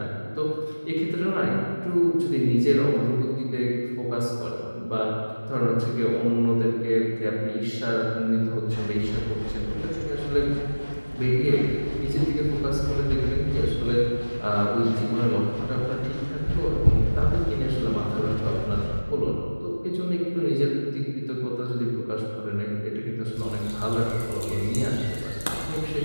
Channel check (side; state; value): both; inverted; correlation -1.00